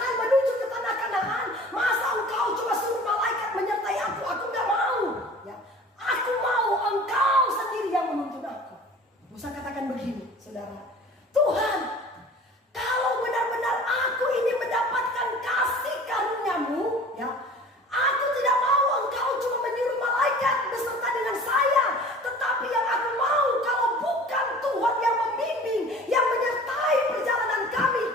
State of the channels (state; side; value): normal; both; correlation 0.44